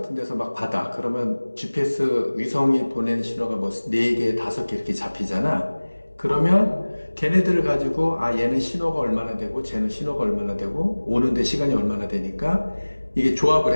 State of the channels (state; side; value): inverted; both; correlation -1.00